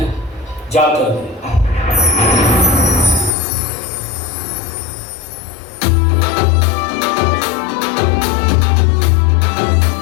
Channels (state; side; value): drops out; right; at 3.3 s